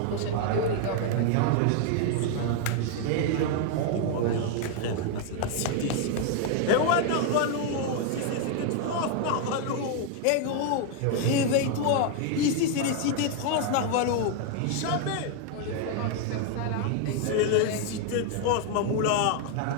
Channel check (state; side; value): different; both; correlation 0.00